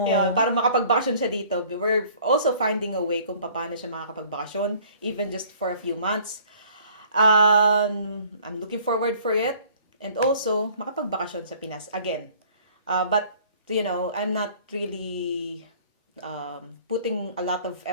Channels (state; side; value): inverted; both; correlation -0.54